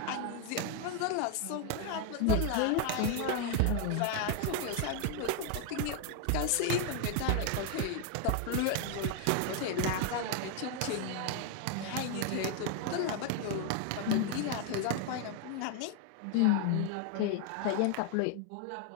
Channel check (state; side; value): different; both; correlation 0.01